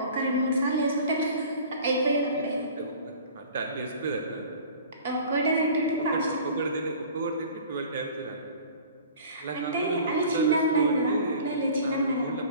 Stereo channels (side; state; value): both; inverted; correlation -0.45